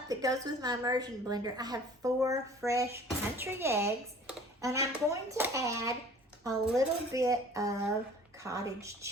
that goes with my immersion blender, I have 4 fresh country eggs, and I'm going to add a little bit of cottage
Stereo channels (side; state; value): both; normal; correlation 0.49